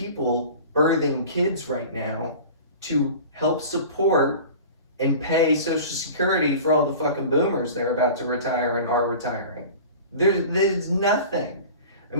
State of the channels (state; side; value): inverted; both; correlation -0.39